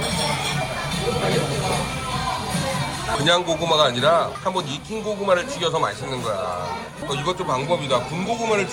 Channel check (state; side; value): identical; both; correlation 1.00